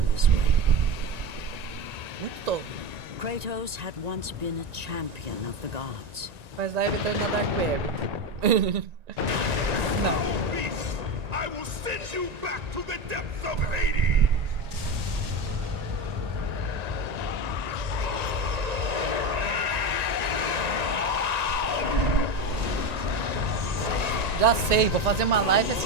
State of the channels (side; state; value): left; late; 1.9 ms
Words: this way. Muito tola. Kratos had once been a champion of the gods. Mas lá evitando na Dark Web. Não. Beast, I will send you back to the depths of Hades! Já sei, vou fazer uma live